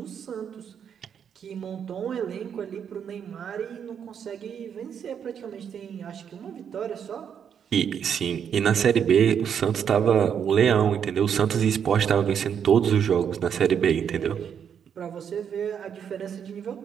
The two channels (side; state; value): left; quieter; 8.0 dB